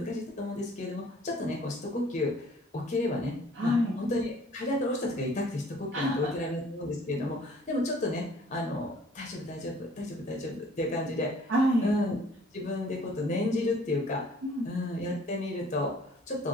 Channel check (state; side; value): normal; both; correlation 0.55